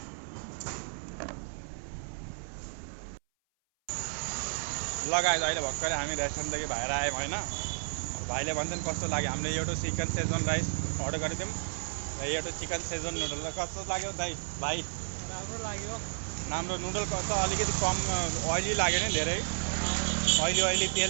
लगाएर अहिले भर्खरै हामी रेस्टुरेन्टदेखि बाहिर आयौँ होइन। भाइले भन्छन् कस्तो लाग्यो, हामीले एउटा चिकन शेजवान राइस अर्डर गरेको थियौँ र एउटा चिकन शेजवान नुडल। कस्तो लाग्यो भाइ? राम्रो लाग्यो। राम्रो नुडल कस्तो, अलिकति कम ओइली लाग्यो नि, धेरै ओइली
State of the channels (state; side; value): silent; left; 56 dB below the other